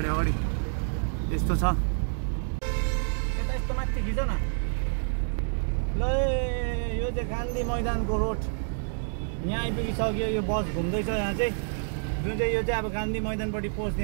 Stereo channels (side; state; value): left; silent; digital silence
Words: अगाडि यस्तो छ। यस्तो माथि खिच न ल। यो चाहिँ गान्धी मैदानको रोड यहाँ आइपुगिसक्यो। यो बस घुम्दैछ यहाँ चाहिँ, जुन चाहिँ यो चाहिँ अब गान्धी मैदानपट्टि पस्ने